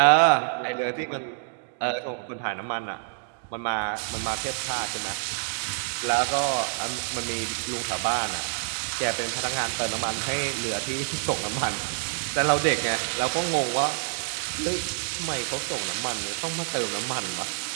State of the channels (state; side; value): silent; left; digital silence